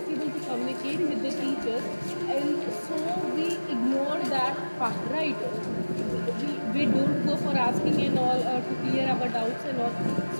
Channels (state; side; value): inverted; both; correlation -1.00